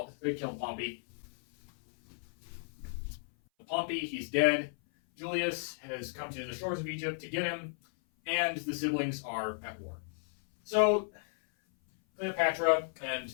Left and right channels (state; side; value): silent; right; 55 dB below the other